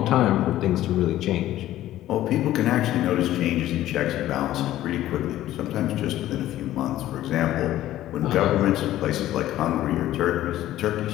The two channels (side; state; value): right; quieter; 14.0 dB